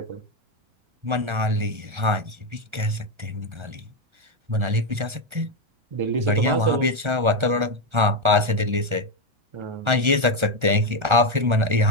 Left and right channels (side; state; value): left; late; 1.4 ms